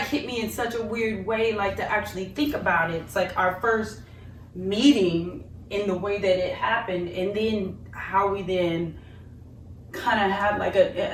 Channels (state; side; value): identical; both; correlation 1.00